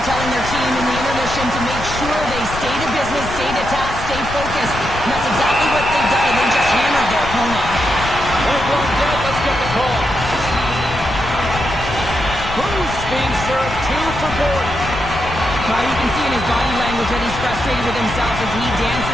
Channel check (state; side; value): noise; left; rumble, 9 dB below the sound